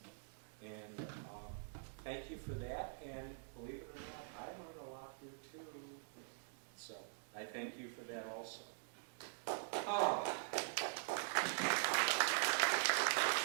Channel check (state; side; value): silent; left; digital silence